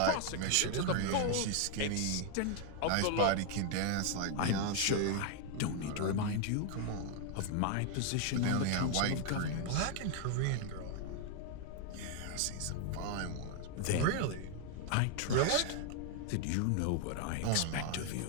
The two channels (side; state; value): both; different; correlation 0.00